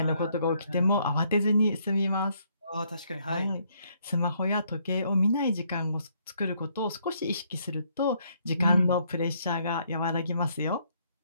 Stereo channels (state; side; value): inverted; both; correlation -0.70